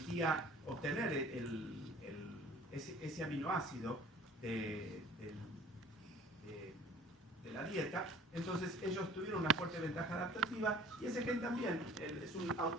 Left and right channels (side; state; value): both; normal; correlation 0.50